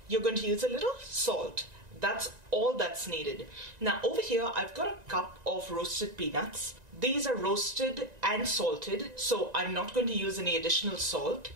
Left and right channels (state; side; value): late; left; 1.9 ms